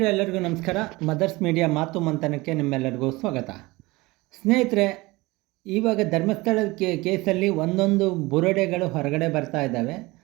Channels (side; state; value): left; quieter; 21.9 dB